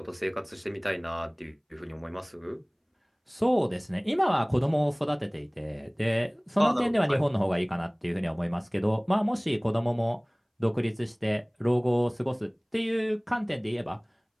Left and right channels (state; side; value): identical; both; correlation 1.00